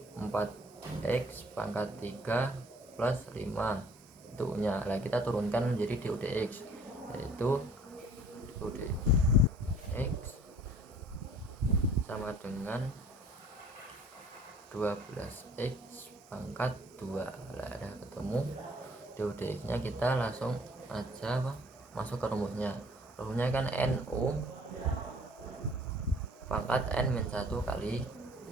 4x pangkat 3 plus 5 itu U nya. Nah, kita turunkan menjadi du dx, yaitu du dx sama dengan 12x pangkat 2. Nah, ada ketemu du dx nya, kita langsung aja masuk ke rumusnya. Rumusnya kan NU pangkat N min 1 kali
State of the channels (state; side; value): normal; both; correlation 0.54